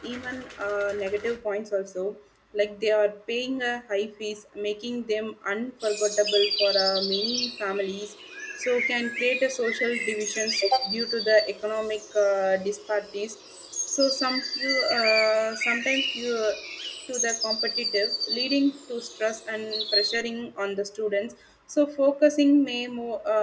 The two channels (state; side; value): identical; both; correlation 1.00